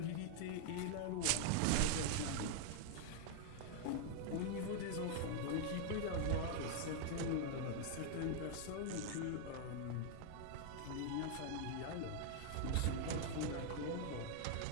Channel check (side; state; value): both; different; correlation 0.00